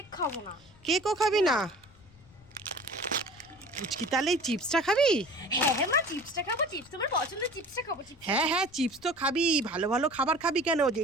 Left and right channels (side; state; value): left; noise; rumble, 26 dB below the sound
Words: খাবো না। কেকও খাবি না? পুচকি তাহলে এই চিপসটা খাবি? হ্যাঁ হ্যাঁ মা চিপসটা খাবো, চিপস আমার পছন্দের, চিপসটা খাবো। হ্যাঁ হ্যাঁ চিপস তো খাবি, ভালো ভালো খাবার খাবি, কেন